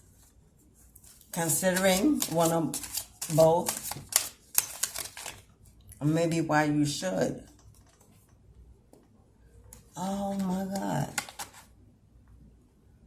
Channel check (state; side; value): identical; both; correlation 1.00